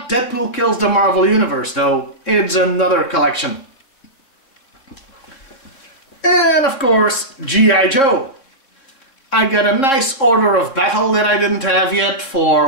Deadpool Kills the Marvel Universe though, it's another collection. And of course, G.I. Joe. I got a nice Order of Battle that I didn't have yet for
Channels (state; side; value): late; right; 3.7 ms